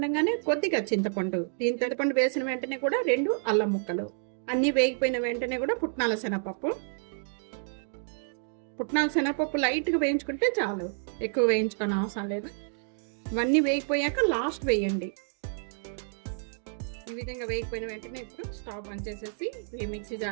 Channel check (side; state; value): left; silent; digital silence